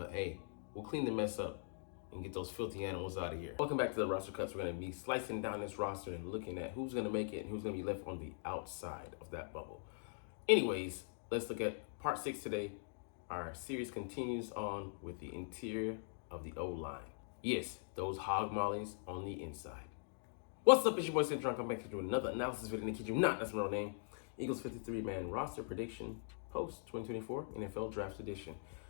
hey, we'll clean the mess up and get those filthy animals out of here. Welcome back to the roster cuts. We're gonna be slicing down this roster and looking at who's gonna make it and who's gonna be left on the outside of that bubble. Anyways, let's look at part 6 today. Our series continues on with the interior of the O-line. Yes, those hog mollies on the inside. What's up, it's your boy Cintron. Come back to do another analysis video. And kid you not, that's my real name. Eagles 53-man roster prediction post 2024 NFL Draft Edition.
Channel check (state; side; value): silent; right; digital silence